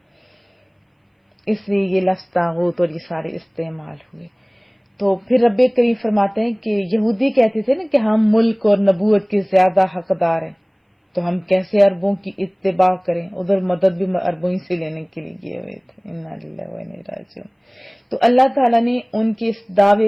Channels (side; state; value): both; identical; correlation 1.00